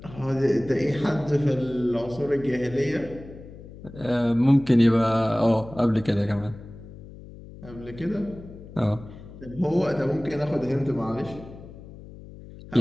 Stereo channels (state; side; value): noise; left; hum, 16 dB below the sound